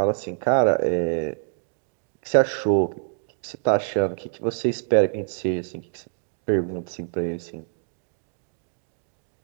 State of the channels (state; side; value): silent; left; digital silence